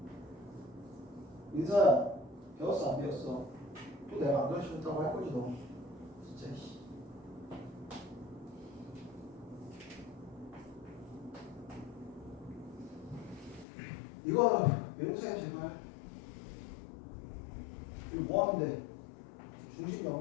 민서야, 배웠어 안 배웠어? 또 내가 안 가르쳐줬다고 할 거지 너. 진짜. 이거 외우세요 제발. 이거 뭐 하면 돼? 중심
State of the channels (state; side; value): drops out; right; at 13.7 s